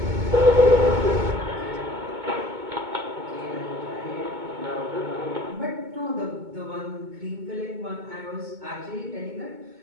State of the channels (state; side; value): late; left; 2.2 ms